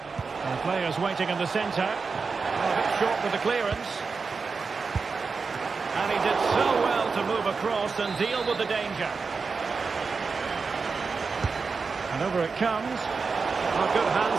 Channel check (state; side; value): quieter; left; 4.8 dB